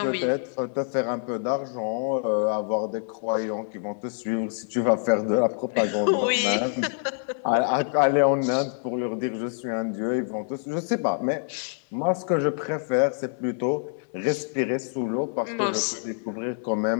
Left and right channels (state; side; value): silent; right; digital silence